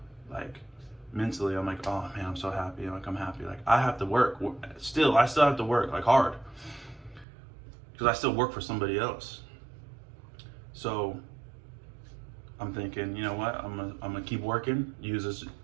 like, mentally I'm like, oh man, I'm so happy. Like, I'm happy. Like, I have to work. I still have to work, like, hard. Because I still work for somebody else. So I'm thinking, you know what? I'm gonna keep working, use this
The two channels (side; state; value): left; drops out; at 7.2 s